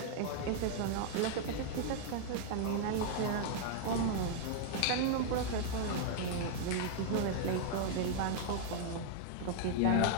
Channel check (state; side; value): different; both; correlation -0.01